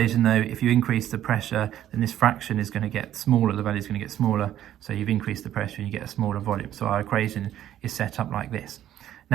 though, if you increase the pressure, then this fraction is going to get smaller, the value is going to get smaller, so you've increased the pressure and you get a smaller volume. So our equation is set up like this.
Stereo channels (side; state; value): left; quieter; 11.8 dB